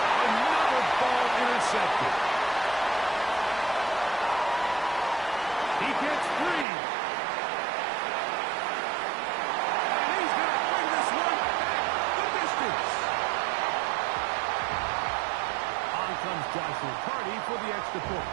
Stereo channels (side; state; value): left; drops out; at 6.7 s